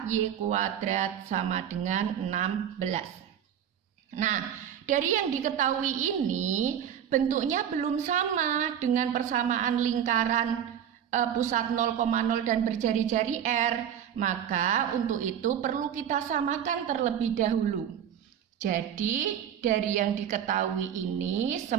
kuadrat sama dengan 16. Nah, dari yang diketahui ini bentuknya belum sama dengan persamaan lingkaran pusat 0,0 dan berjari-jari R. Maka untuk itu perlu kita samakan terlebih dahulu. Jadi dari yang diketahui ini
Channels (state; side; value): quieter; left; 9.3 dB